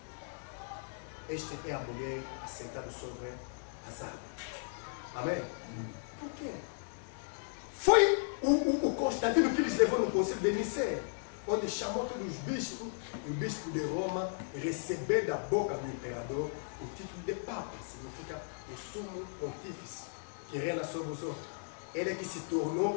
Esta é a mulher assentada sobre as águas. Amém? Por quê? Foi o Constantino que lhes levou no concílio de Nicéia, onde chamou todos os bispos, e o bispo de Roma recebeu da boca do imperador o título de Papa, significa o sumo pontífice, que reina sobre os outros. Ele é que se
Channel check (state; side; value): silent; right; digital silence